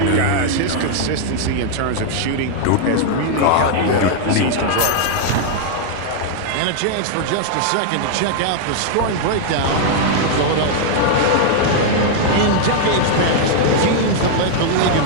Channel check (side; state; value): both; different; correlation -0.01